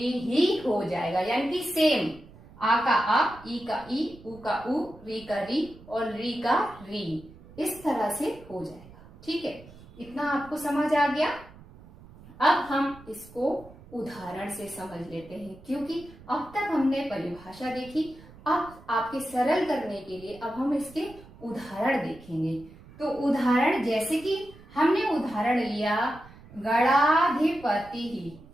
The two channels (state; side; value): noise; right; rumble, 21 dB below the sound